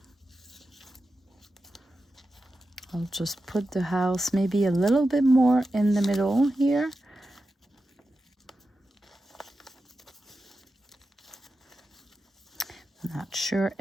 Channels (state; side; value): normal; both; correlation 0.91